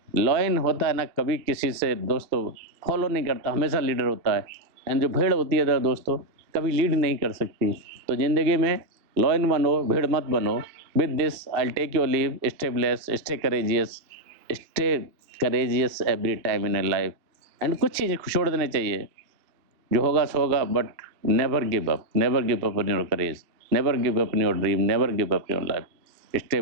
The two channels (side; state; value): left; late; 2.5 ms